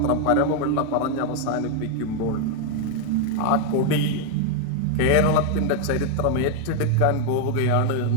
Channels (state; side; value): different; both; correlation 0.00